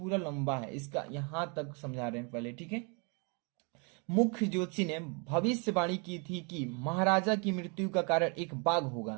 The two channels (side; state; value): left; quieter; 34.4 dB